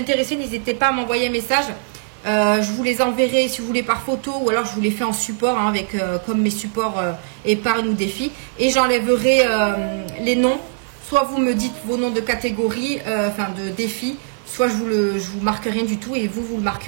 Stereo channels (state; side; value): silent; left; digital silence